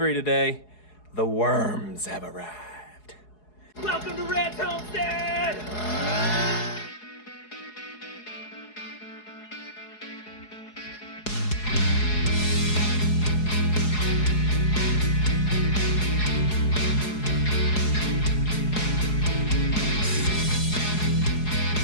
today. The worms have arrived. Welcome to Red's Homestead!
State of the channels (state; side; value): late; right; 4.7 ms